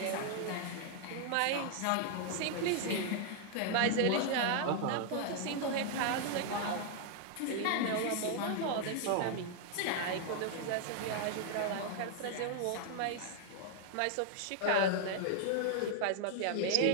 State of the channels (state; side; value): different; both; correlation 0.00